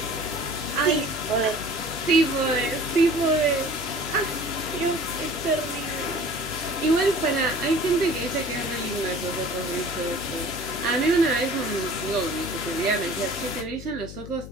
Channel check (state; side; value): noise; left; hum, 12 dB below the sound